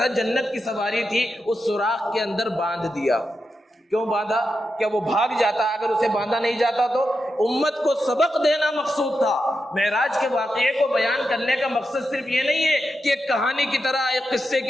جنت کی سواری تھی، اس سوراخ کے اندر باندھ دیا۔ کیوں باندھا؟ کیا وہ بھاگ جاتا؟ اگر اسے باندھا نہیں جاتا تو امت کو سبق دینا مقصود تھا۔ معراج کے واقعے کو بیان کرنے کا مقصد صرف یہ نہیں ہے کہ ایک کہانی کی طرح، ایک قصے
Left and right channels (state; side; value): normal; both; correlation 0.88